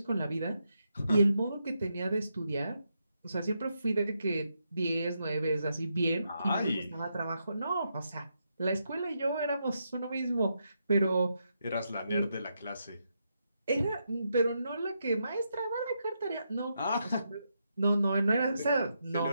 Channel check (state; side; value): inverted; both; correlation -0.82